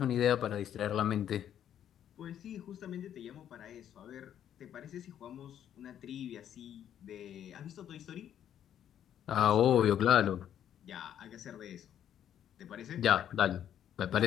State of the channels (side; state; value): right; quieter; 10.1 dB